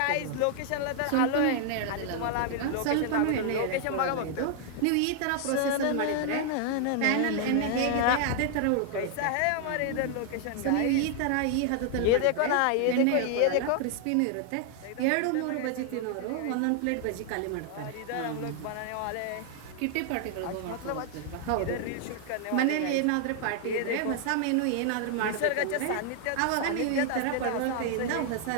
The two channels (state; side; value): different; both; correlation 0.00